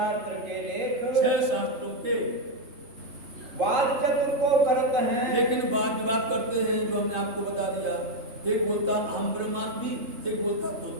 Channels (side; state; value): left; late; 3.2 ms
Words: के लेख 6 शास्त्रों के वाद चतुर को करते हैं, लेकिन बात विवाद करते हैं, जो हमने आपको बता दिया। एक बोलता अहम ब्रह्मास्मि, एक बोलता